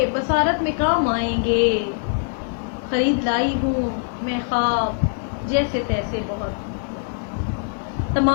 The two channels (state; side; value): silent; right; digital silence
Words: بصارت میں کام آئیں گے، خرید لائی ہوں میں خواب جیسے تیسے بہت۔